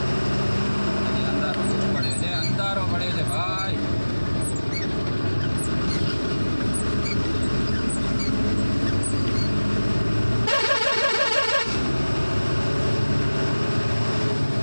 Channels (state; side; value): inverted; both; correlation -1.00